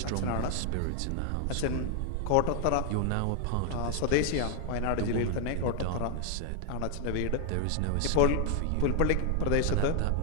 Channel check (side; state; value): both; different; correlation 0.00